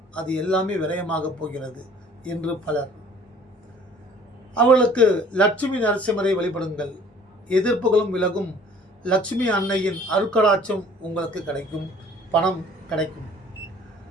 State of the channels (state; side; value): normal; both; correlation 0.53